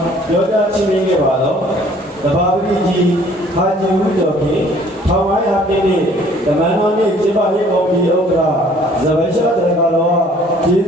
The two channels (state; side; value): normal; both; correlation 0.56